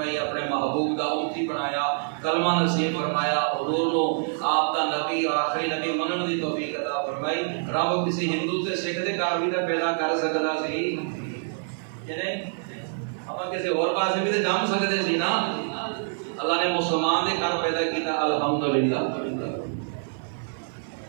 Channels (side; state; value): left; silent; 55 dB below the other